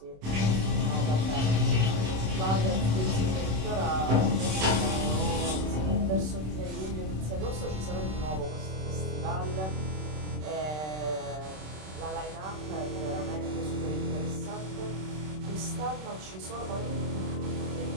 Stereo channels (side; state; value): left; late; 26 ms